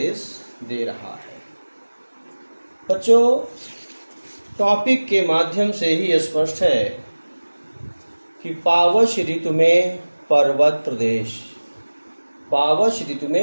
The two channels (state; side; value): inverted; both; correlation -1.00